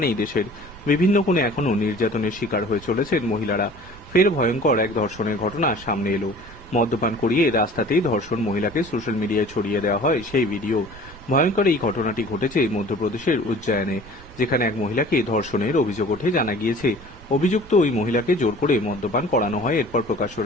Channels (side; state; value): right; noise; rumble, 19 dB below the sound